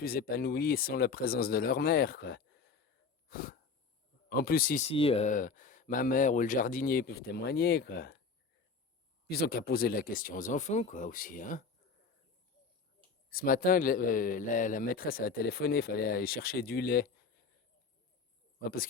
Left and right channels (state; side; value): quieter; right; 4.8 dB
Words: épanouis sans la présence de leur mère, quoi. En plus, ici, ma mère ou le jardinier peuvent témoigner, quoi. Ils ont qu'à poser la question aux enfants, quoi, aussi, hein. Ce matin, la maîtresse a téléphoné, il fallait aller chercher du lait. Ouais, parce